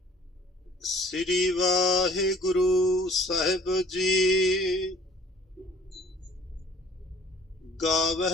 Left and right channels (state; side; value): normal; both; correlation 0.54